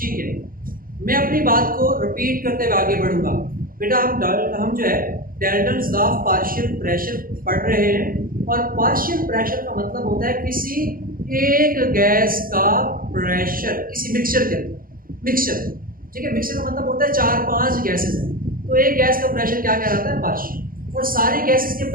है, मैं अपनी बात को रिपीट करते हुए आगे बढ़ूंगा। बेटा हम जो है Dalton's law of partial pressure पढ़ रहे हैं, और पार्शियल प्रेशर का मतलब होता है किसी एक गैस का प्रेशर किसी मिक्सचर के अंदर। मिक्सचर, ठीक है, मिक्सचर का मतलब होता है 4-5 गैसेस हैं, तो एक गैस का प्रेशर क्या कहलाता है? पार्शियल। और सारी गैसेस के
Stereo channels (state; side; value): late; left; 0.41 ms